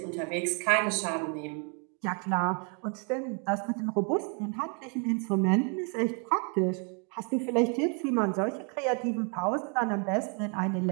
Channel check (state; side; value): quieter; left; 38.3 dB